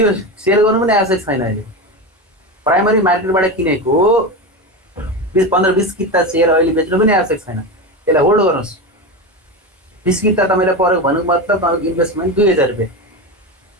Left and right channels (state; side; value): normal; both; correlation 0.20